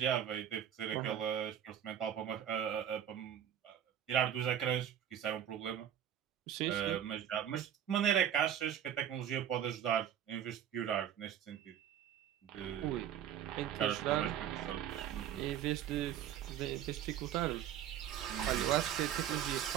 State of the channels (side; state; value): left; quieter; 9.9 dB